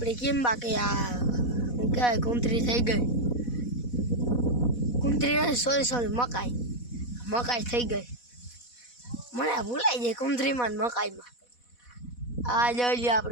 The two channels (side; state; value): right; late; 4.1 ms